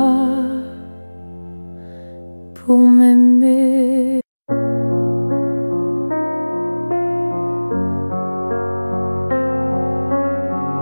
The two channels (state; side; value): inverted; both; correlation -1.00